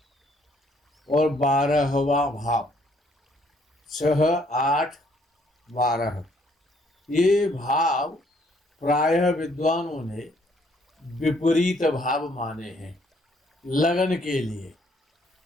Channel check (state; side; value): normal; both; correlation 0.66